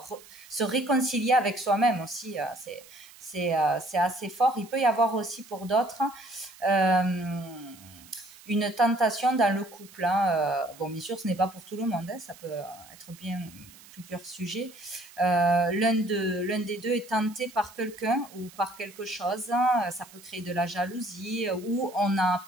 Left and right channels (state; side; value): noise; right; hiss, 21 dB below the sound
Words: se réconcilier avec soi-même aussi, c'est assez fort. Il peut y avoir aussi pour d'autres une tentation dans le couple. Bon, bien sûr, ce n'est pas pour tout le monde, ça peut être bien plusieurs sujets. L'un des deux est tenté par quelqu'un ou par quelque chose. Ça peut créer de la jalousie ou on a